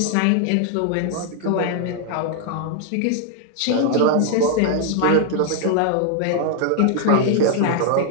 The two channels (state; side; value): different; both; correlation 0.00